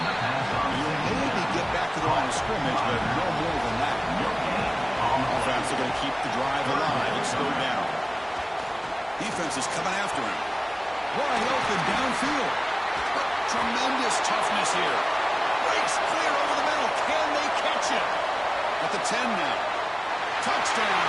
maybe get back to the line of scrimmage, but no more than that. Offense are going to keep the drive alive. It's 3rd down. Defense is coming after him. Wide open downfield. Tremendous toughness here. Breaks clear over the middle. Can they catch him? At the 10 now.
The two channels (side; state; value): both; identical; correlation 1.00